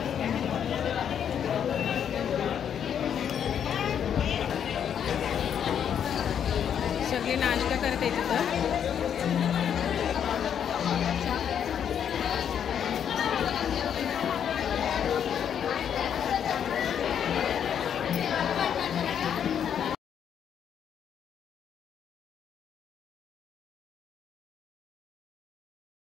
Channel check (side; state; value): right; quieter; 8.6 dB